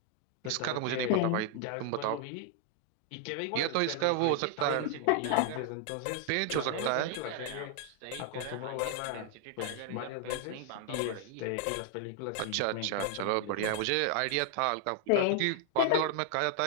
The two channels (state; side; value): different; both; correlation 0.00